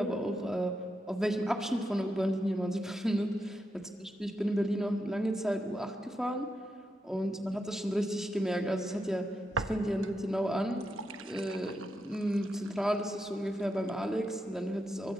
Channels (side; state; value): both; normal; correlation 0.85